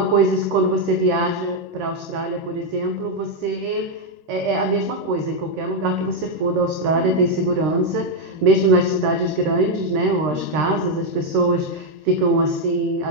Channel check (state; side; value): late; left; 13 ms